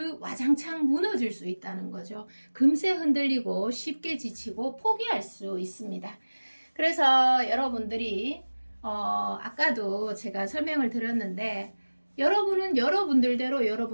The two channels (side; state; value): both; inverted; correlation -1.00